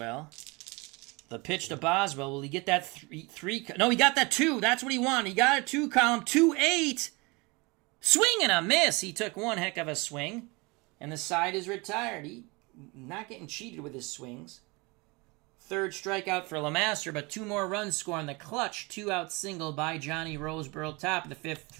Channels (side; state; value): left; quieter; 26.6 dB